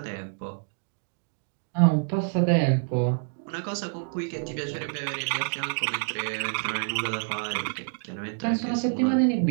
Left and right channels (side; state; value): left; silent; 58 dB below the other